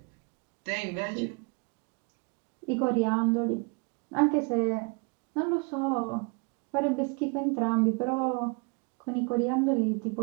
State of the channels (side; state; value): left; quieter; 33.2 dB